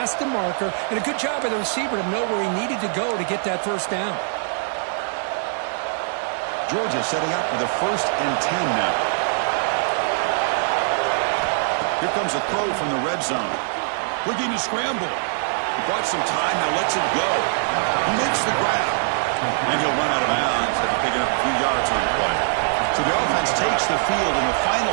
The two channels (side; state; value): left; silent; digital silence